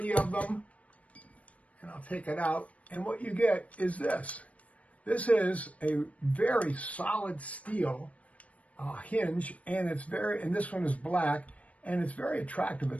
of them, and I'll take it out. And what you get is this. This is a very solid steel hinge, and this one is black, and it's very attractive.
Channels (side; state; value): right; late; 0.066 ms